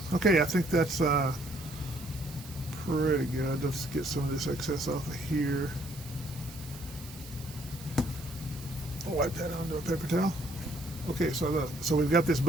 Okay, I think that's pretty good. Let's get some of this excess off of here. I'll wipe that onto a paper towel. Okay, so we've got this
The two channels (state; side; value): noise; right; hiss, 17 dB below the sound